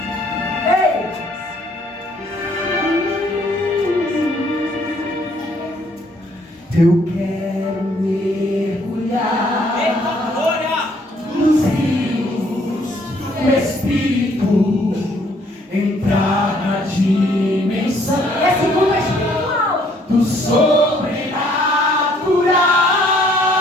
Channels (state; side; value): normal; both; correlation 0.64